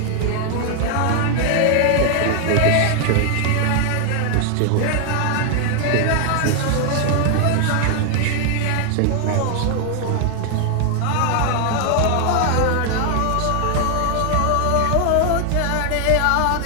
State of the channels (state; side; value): different; both; correlation 0.00